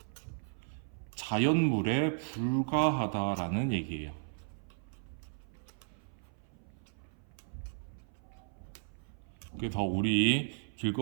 자연물에 불과하다라는 얘기예요. 그래서 우리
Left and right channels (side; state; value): left; silent; 54 dB below the other